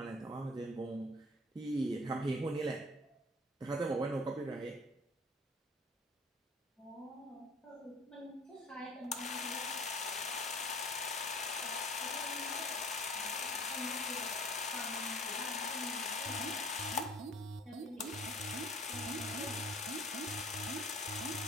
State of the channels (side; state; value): both; normal; correlation 0.48